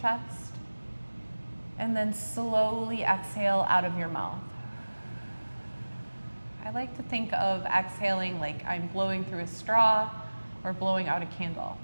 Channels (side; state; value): both; inverted; correlation -1.00